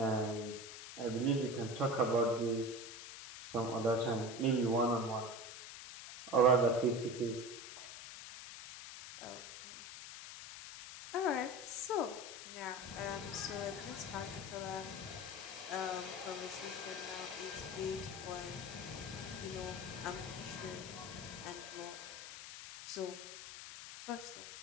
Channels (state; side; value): noise; left; hiss, 11 dB below the sound